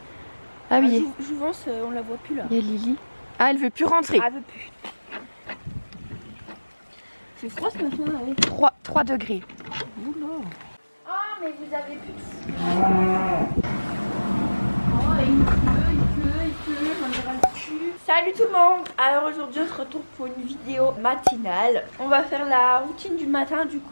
Ah oui. Jouvence, on la voit plus là. Il y a Lily. Ah, elle veut plus rentrer. Ah, elle veut plus. C'est froid ce matin là, oui. 3 degrés. Oula. Ah, mais vous avez plus de... il pleut, j'en ai ras le cul. Salut tout le monde. Alors aujourd'hui on se retrouve pour une vidéo matinale. On va faire la routine du matin. Du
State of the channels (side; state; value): both; inverted; correlation -1.00